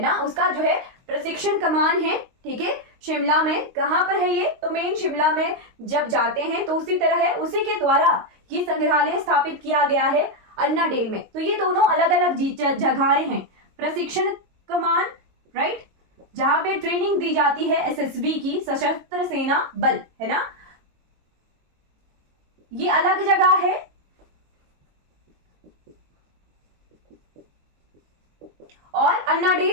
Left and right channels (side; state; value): left; late; 22 ms